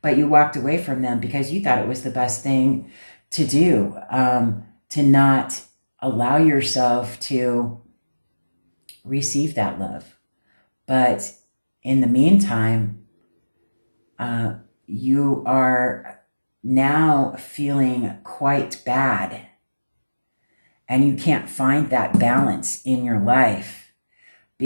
But you walked away from them because you thought it was the best thing to do, to not allow yourself to receive that love. But in the meantime, you are now feeling quite bad, and you can't find that balance in your life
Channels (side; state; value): both; inverted; correlation -1.00